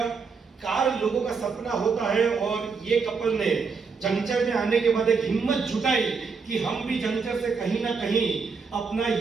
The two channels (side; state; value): left; quieter; 5.1 dB